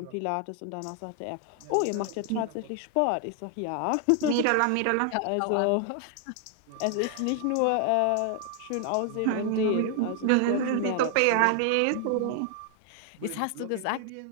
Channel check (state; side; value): different; both; correlation 0.00